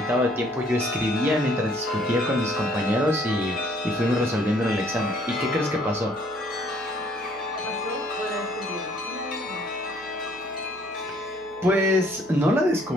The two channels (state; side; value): noise; right; hum, 28 dB below the sound